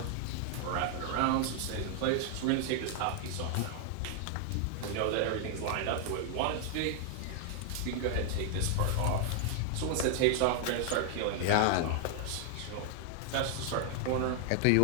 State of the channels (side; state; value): both; different; correlation 0.00